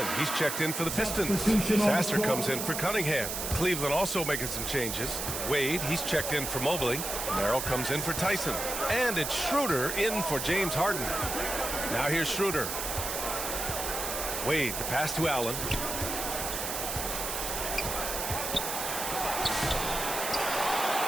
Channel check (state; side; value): noise; right; hiss, 3 dB below the sound